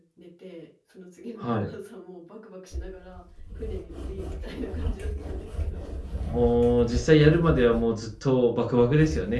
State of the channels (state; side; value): identical; both; correlation 1.00